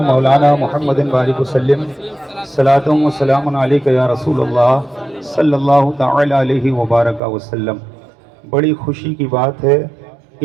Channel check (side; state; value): left; drops out; at 7.2 s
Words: मौलाना मुहम्मदिन बारिक वसल्लिम। सलातुम व सलामुन अलैका या रसूलल्लाह सल्लल्लाहु तआला अलैहि व बारक वसल्लम। बड़ी खुशी की बात है,